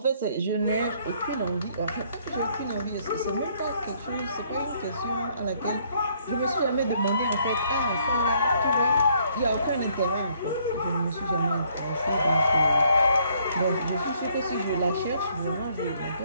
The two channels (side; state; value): both; inverted; correlation -0.67